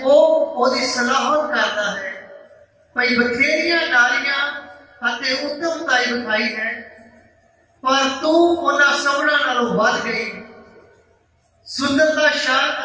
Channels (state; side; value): identical; both; correlation 1.00